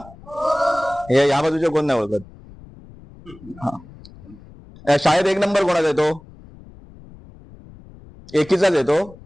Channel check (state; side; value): noise; left; rumble, 21 dB below the sound